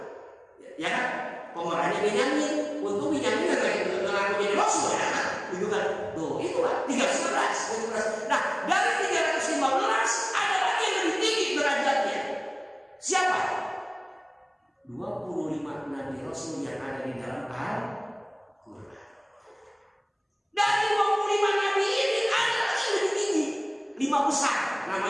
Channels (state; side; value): identical; both; correlation 1.00